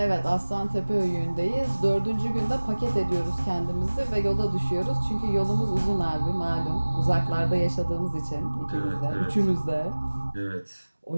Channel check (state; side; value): inverted; both; correlation -1.00